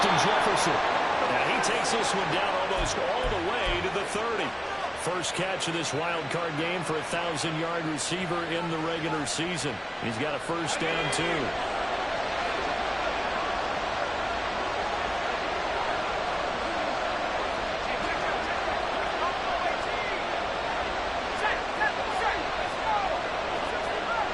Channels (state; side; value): identical; both; correlation 1.00